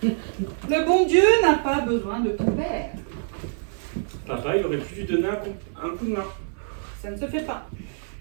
Le bon Dieu n'a pas besoin de ton père. Papa, il aurait pu lui donner un coup de main. Ça ne se fait pas.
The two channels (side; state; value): left; silent; 57 dB below the other